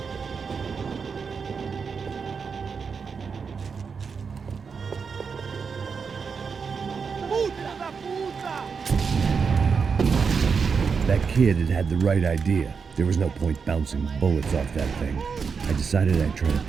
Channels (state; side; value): quieter; left; 5.7 dB